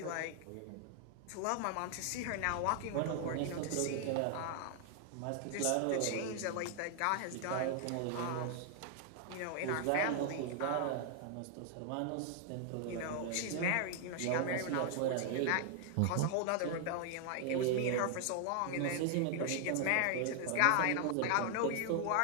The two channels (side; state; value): both; different; correlation 0.00